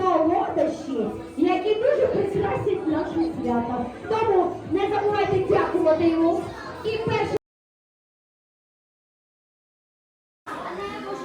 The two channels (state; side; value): identical; both; correlation 1.00